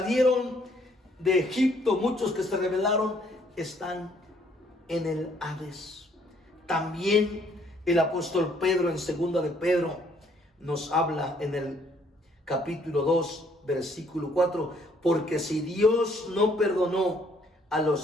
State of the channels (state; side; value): normal; both; correlation 0.65